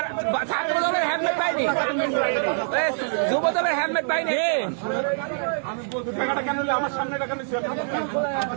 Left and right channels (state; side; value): silent; left; 62 dB below the other